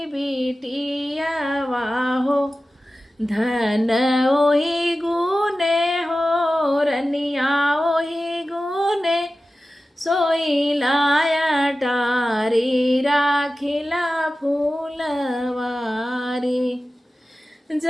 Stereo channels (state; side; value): normal; both; correlation 0.95